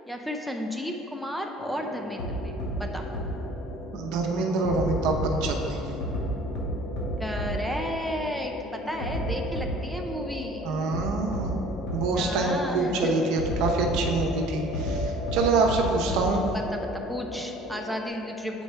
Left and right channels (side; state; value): both; normal; correlation 0.49